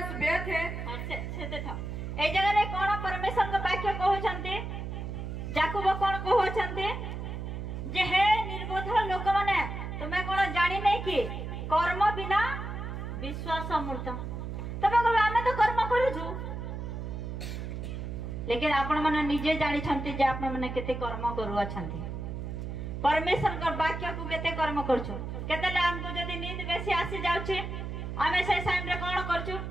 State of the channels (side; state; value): right; noise; hum, 6 dB below the sound